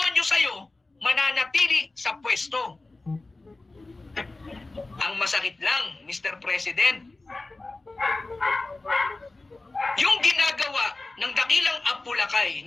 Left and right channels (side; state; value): right; quieter; 3.1 dB